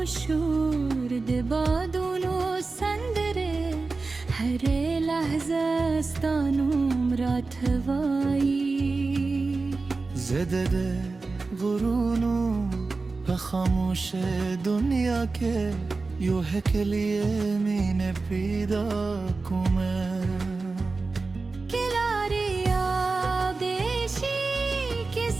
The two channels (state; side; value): quieter; left; 3.8 dB